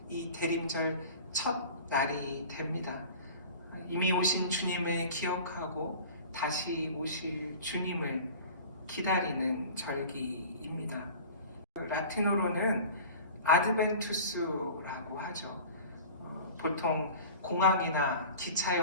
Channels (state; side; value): inverted; both; correlation -0.40